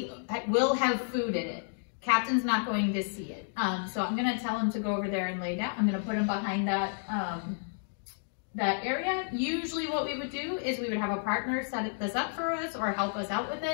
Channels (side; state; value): right; silent; digital silence